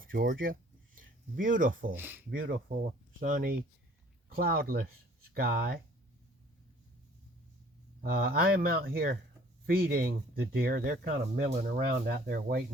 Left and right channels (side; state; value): both; normal; correlation 0.54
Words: Georgia. Beautiful, beautiful, sunny, cloudless sky. I am out here feeding the deer. They're kind of milling around out there